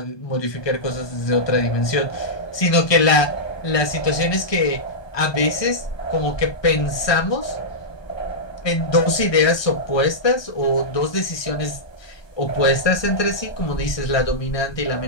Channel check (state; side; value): late; right; 1.2 ms